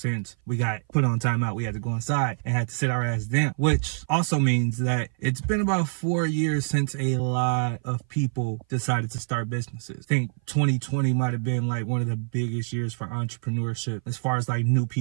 we got put on timeout. We had to go inside and had to sit our ass down, which also means that it's been about 4 years since a lot of people decided to start businesses. I think 2020 might have been like one of the biggest years for entrepreneurship as far as like new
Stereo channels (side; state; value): left; silent; 57 dB below the other